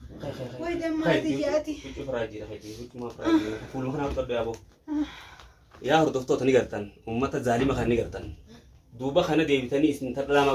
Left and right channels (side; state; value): both; identical; correlation 1.00